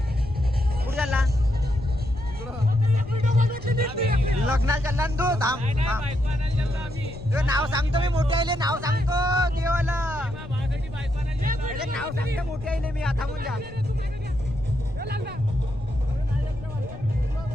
कुठे चालला? लग्नाला चालला ना तू? थांब तुझं नाव सांगतो मी. मोठे आले नाव सांगतो देवाला. नाव सांगतो मोठे आले मी. आता थांबून जा.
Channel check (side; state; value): left; noise; rumble, 13 dB below the sound